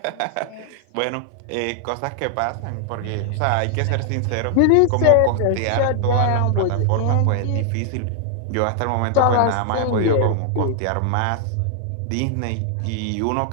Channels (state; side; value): different; both; correlation 0.00